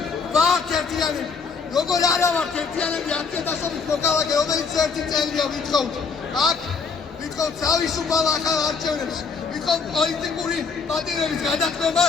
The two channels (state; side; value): quieter; right; 5.1 dB